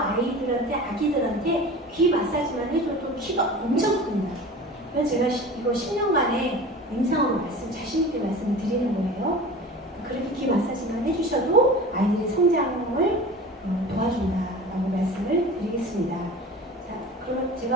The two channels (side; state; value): both; normal; correlation 0.37